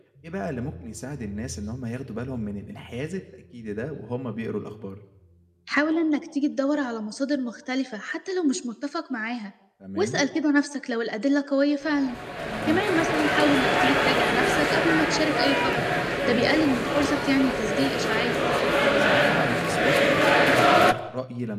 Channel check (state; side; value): identical; both; correlation 1.00